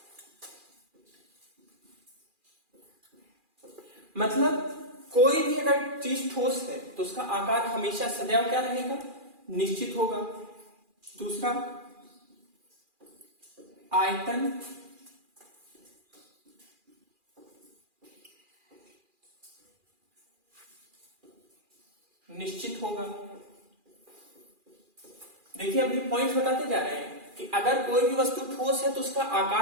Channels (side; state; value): left; late; 2.4 ms